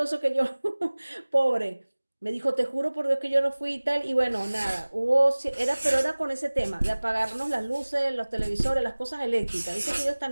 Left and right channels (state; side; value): inverted; both; correlation -1.00